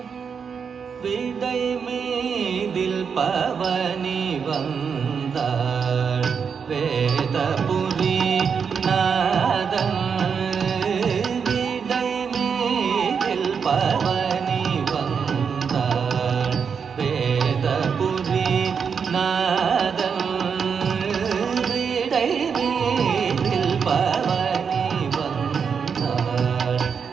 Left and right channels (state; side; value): quieter; left; 6.4 dB